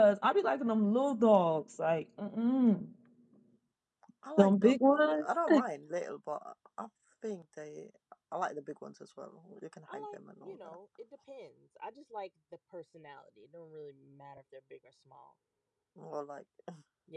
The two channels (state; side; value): identical; both; correlation 1.00